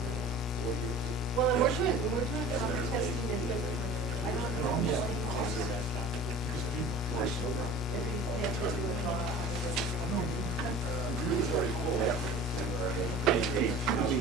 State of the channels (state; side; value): normal; both; correlation 0.40